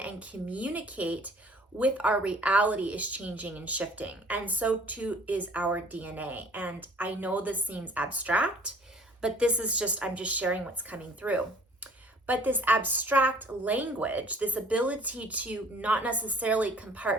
communicate with our reality is changing and shifting. And so too is our DNA. And I know this seems abstract, but this is I'm just sharing what's coming through. But this abstract language, this ability to not necessarily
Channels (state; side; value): normal; both; correlation 0.53